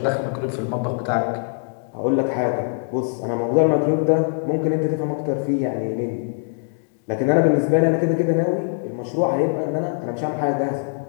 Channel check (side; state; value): right; silent; digital silence